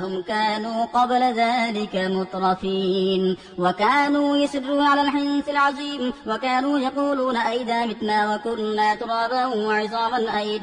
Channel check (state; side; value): identical; both; correlation 1.00